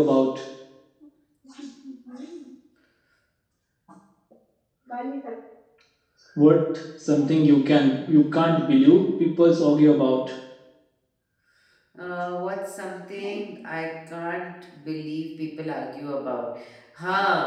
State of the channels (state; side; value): identical; both; correlation 1.00